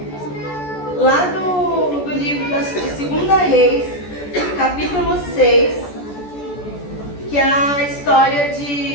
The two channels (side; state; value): right; late; 14 ms